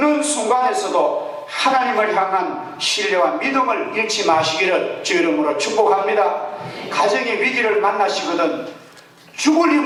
순간에서도 하나님을 향한 신뢰와 믿음을 잃지 마시기를 주 이름으로 축복합니다. 가정의 위기를 만나시거든 죽을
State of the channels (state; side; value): identical; both; correlation 1.00